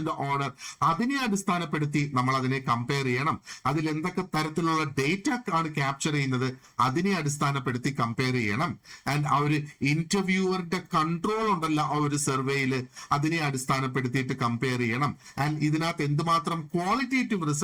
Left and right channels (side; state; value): both; identical; correlation 1.00